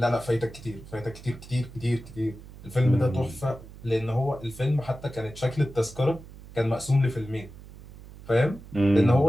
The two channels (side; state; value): right; noise; hum, 17 dB below the sound